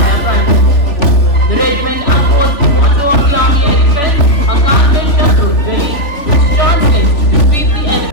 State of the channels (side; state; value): right; late; 3.6 ms